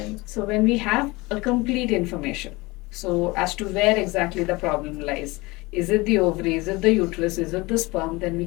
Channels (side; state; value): right; quieter; 23.1 dB